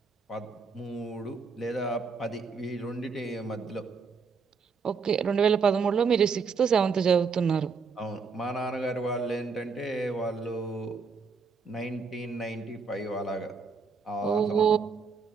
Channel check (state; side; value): quieter; left; 5.2 dB